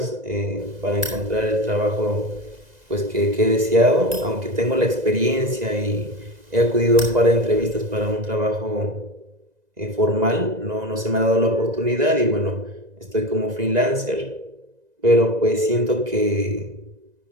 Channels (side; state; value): left; late; 2.0 ms